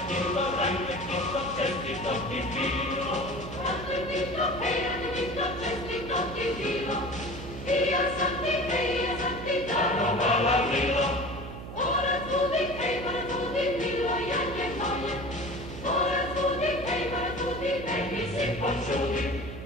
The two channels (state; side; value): noise; right; hum, 10 dB below the sound